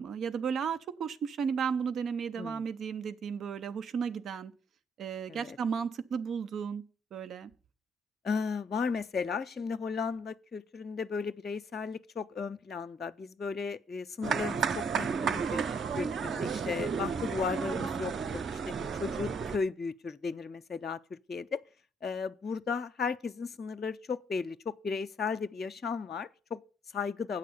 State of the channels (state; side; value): normal; both; correlation 0.68